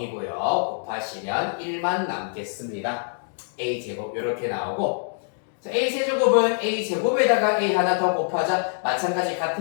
곱하시면 1만 남겠습니다. A 제곱 요렇게 나오고, 자, A 세제곱은 A 제곱에다가 A 하나 더 곱하자. 마찬가지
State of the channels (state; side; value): silent; right; digital silence